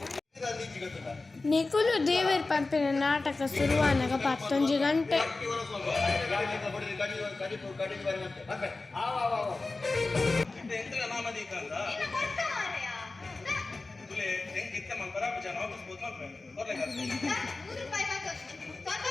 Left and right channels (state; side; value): quieter; right; 3.5 dB